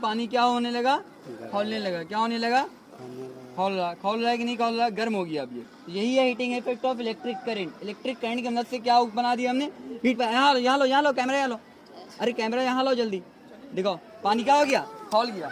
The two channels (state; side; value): identical; both; correlation 1.00